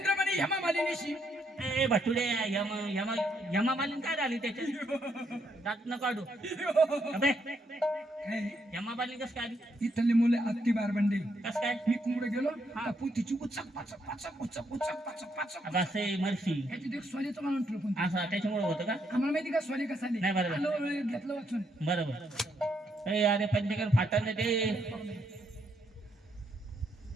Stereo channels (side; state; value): both; normal; correlation 0.75